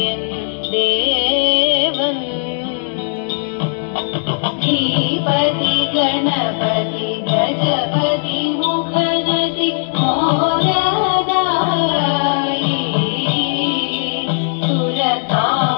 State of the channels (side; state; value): right; silent; digital silence